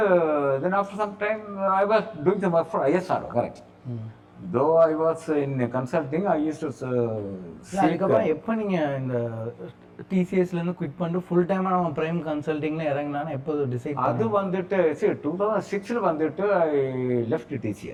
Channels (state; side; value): identical; both; correlation 1.00